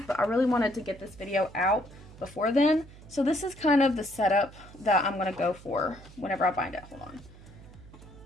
I really wanted to get this video out before then. So this is kind of the setup that I'm going to go for whenever I bind it. Hold on.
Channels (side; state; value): right; noise; hum, 19 dB below the sound